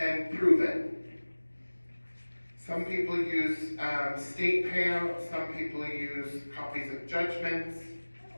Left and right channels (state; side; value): inverted; both; correlation -1.00